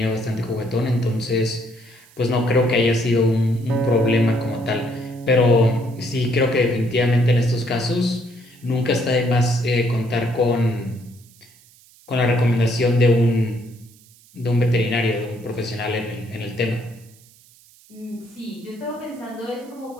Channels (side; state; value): right; noise; hiss, 27 dB below the sound